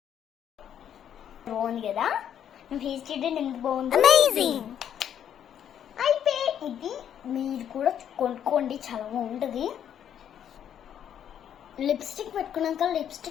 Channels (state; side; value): quieter; right; 9.5 dB